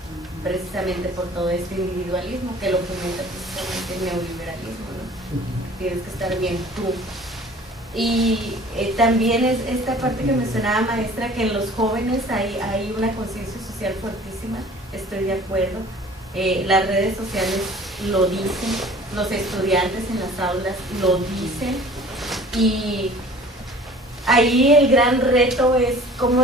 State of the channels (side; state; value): both; normal; correlation 0.48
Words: precisamente por todo este individualismo que lo fomenta precisamente el neoliberalismo, ¿no? Tienes que estar bien tú. Y también es esta parte que mencionaba maestra, que en los jóvenes hay una conciencia social fuertísima, estoy de acuerdo. Las redes sociales lo dicen, los estudiantes en las aulas lo dicen, y ahí el gran reto es